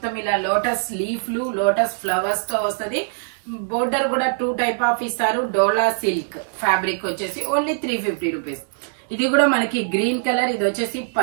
ఇలా లోటస్ లీఫ్లు, లోటస్ ఫ్లవర్స్ తో వస్తుంది. బోర్డర్ కూడా 2 టైప్ ఆఫ్ ఇస్తారు. డోలా సిల్క్ ఫ్యాబ్రిక్ వచ్చేసి ఓన్లీ 350 రూపీస్. ఇది కూడా మనకి గ్రీన్ కలర్. ఇది వచ్చేసి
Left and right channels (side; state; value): left; silent; digital silence